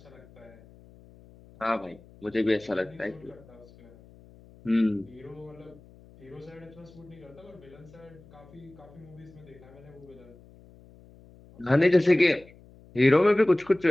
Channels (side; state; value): left; noise; hum, 24 dB below the sound